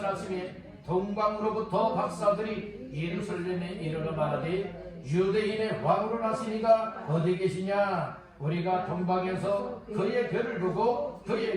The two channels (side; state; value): both; identical; correlation 1.00